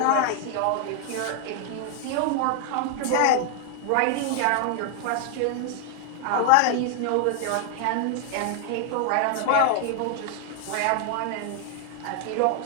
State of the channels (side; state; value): both; different; correlation 0.00